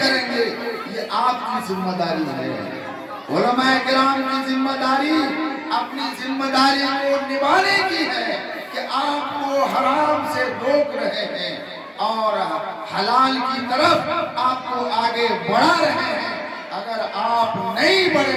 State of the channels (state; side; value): identical; both; correlation 1.00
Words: گے یہ آپ کی ذمہ داری ہے۔ علماء کرام کی ذمہ داری اپنی ذمہ داری کو نبھانے کی ہے کہ آپ کو حرام سے روک رہے ہیں اور حلال کی طرف آپ کو آگے بڑھا رہے ہیں۔ اگر آپ نہیں